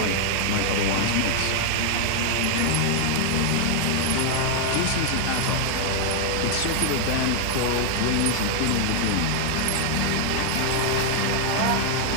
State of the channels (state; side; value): different; both; correlation 0.00